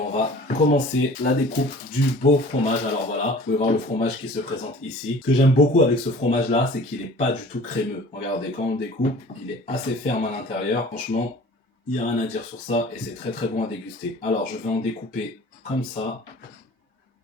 va commencer la découpe du beau fromage. Alors voilà, vous pouvez voir le fromage qui se présente ici. Ce que j'aime beaucoup avec ce fromage-là, c'est qu'il n'est pas du tout crémeux. Regardez, quand on le découpe, il est assez ferme à l'intérieur. Franchement, il n'y a rien à dire sur ça et c'est très bon à déguster. Alors je vais en découper comme ça,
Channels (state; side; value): normal; both; correlation 0.46